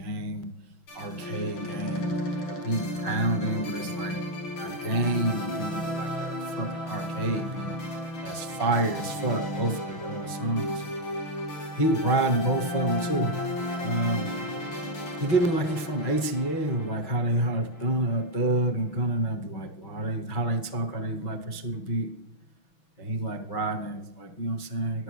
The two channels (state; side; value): late; right; 6.1 ms